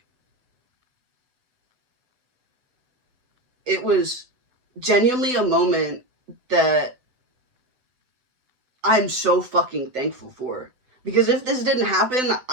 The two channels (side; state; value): left; late; 7.9 ms